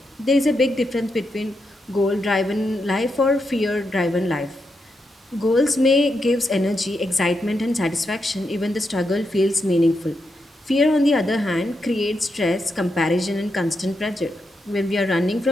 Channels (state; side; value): normal; both; correlation 0.84